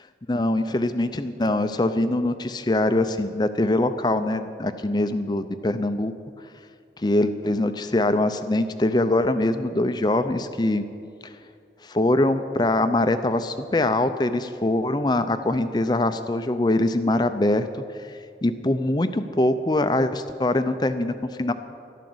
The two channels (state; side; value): normal; both; correlation 0.68